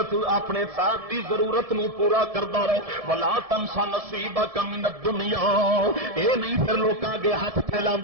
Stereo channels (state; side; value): late; left; 1.7 ms